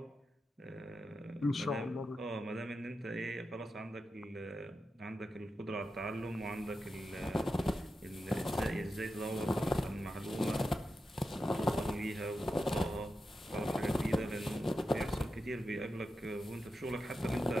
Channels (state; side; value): normal; both; correlation 0.89